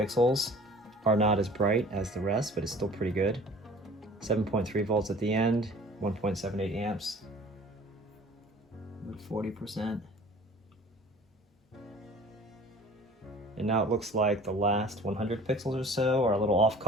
are not as bright as the rest, but it's still pretty good. 7.3 volts at the end, 1.78 amps. 40%. And now it looks like the last 100 pixels or so are a little off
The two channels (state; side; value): normal; both; correlation 0.47